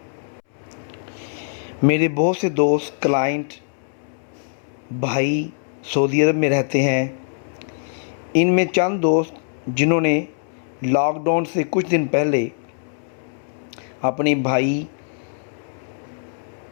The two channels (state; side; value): silent; right; 64 dB below the other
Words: میرے بہت سے دوست کلائنٹ بھائی سعودی عرب میں رہتے ہیں۔ ان میں چند دوست جنہوں نے لاک ڈاؤن سے کچھ دن پہلے اپنے بھائی،